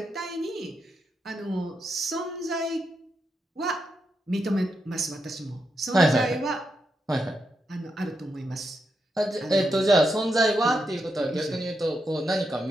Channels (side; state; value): both; normal; correlation 0.84